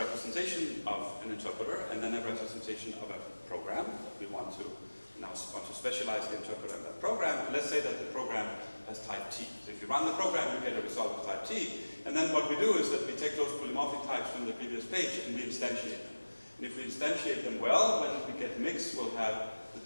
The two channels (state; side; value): inverted; both; correlation -1.00